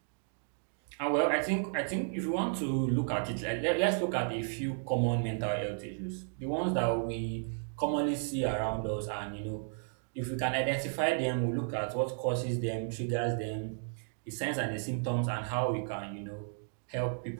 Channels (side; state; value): left; silent; digital silence